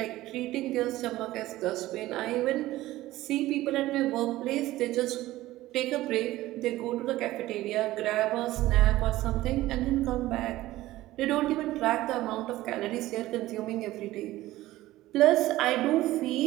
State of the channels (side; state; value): left; quieter; 16.5 dB